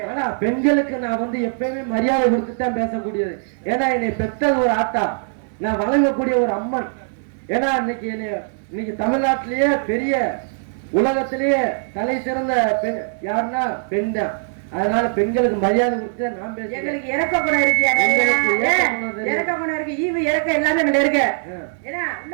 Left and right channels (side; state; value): left; silent; 65 dB below the other